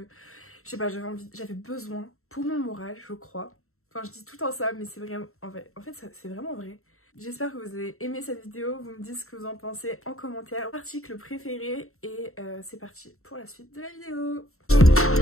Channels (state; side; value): late; right; 0.63 ms